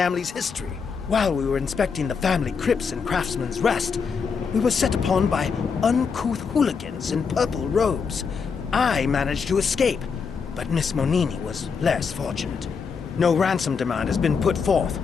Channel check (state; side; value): quieter; right; 5.7 dB